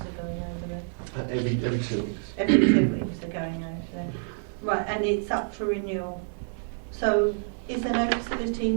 are going over there. Every 2 weeks. Every 2 weeks they're going over there. Right, and it's up for renewal. So is there no facility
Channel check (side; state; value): left; silent; 60 dB below the other